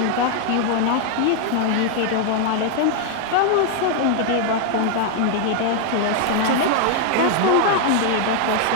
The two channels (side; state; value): both; different; correlation 0.00